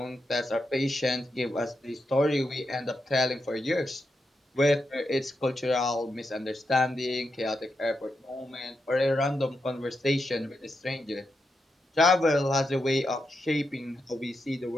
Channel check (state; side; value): normal; both; correlation 0.85